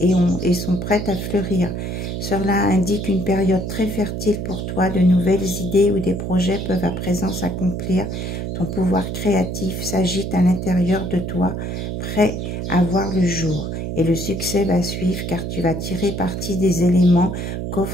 sont prêtes à fleurir. Cela indique une période très fertile pour toi. De nouvelles idées ou des projets peuvent à présent s'accomplir. Ton pouvoir créatif s'agite à l'intérieur de toi, prêt à voir le jour. Et le succès va suivre car tu vas tirer parti des éléments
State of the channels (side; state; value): right; noise; hum, 4 dB below the sound